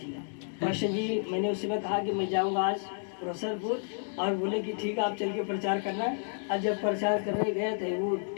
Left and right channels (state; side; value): silent; right; digital silence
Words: पास्टर जी, मैंने उस समय कहा कि मैं जाऊंगा आज रोसरपुर, और बोले कि ठीक है आप चल के प्रचार करना। और जब प्रचार करने गए थे, वो